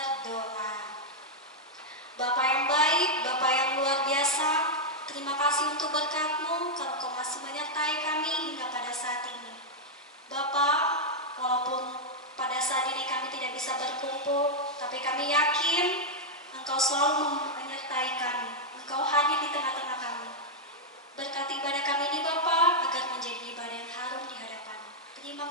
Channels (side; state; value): both; normal; correlation -0.03